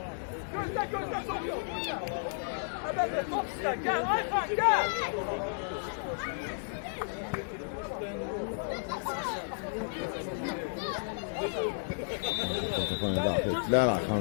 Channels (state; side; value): silent; right; digital silence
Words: Gözle sokuyor. Haber ver, top iste. Gel Ayhan gel. Topunu daxil etdilər.